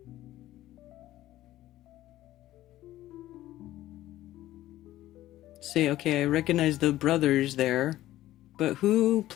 say, okay, I recognize the brothers there, but who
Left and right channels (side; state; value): right; quieter; 14.7 dB